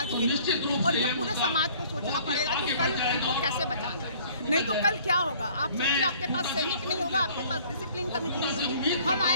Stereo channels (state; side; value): inverted; both; correlation -0.54